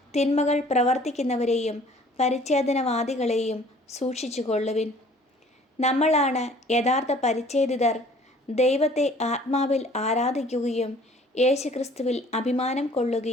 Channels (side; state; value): both; normal; correlation 0.53